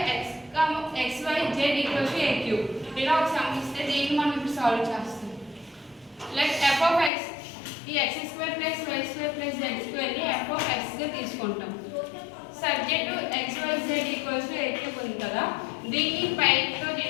x y z equals to a cube. ఇలా ఒక సమ్ ఇస్తే దీన్ని మనం ఇప్పుడు సాల్వ్ చేస్తాం. లైక్ f of x ఈ x square plus y square plus z square ని f of x గా తీసుకుంటాం. Subject to x y z equals to a cube ఉంది కదా, దీన్ని పై తో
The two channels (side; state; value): right; drops out; at 7.1 s